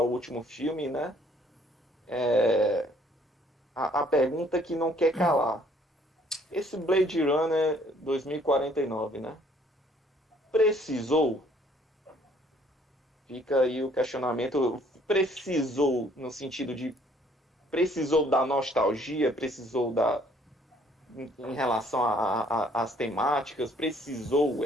último filme, né? A pergunta que não quer calar. Esse Blade Runner 2049, né? Precisou? Fica aí o questionamento. Precisou no sentido de... Precisou da nostalgia? Precisou em relação às temáticas? Precisou?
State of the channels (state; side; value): normal; both; correlation 0.61